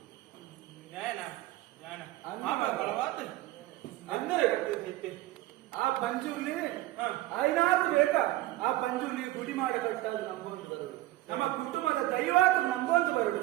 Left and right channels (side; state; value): left; quieter; 16.5 dB